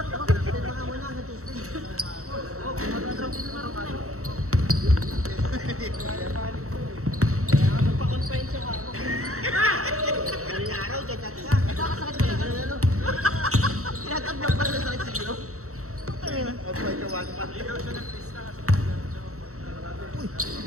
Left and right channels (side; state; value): left; late; 0.64 ms